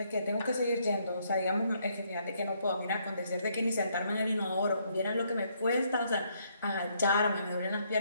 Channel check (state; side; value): inverted; both; correlation -0.71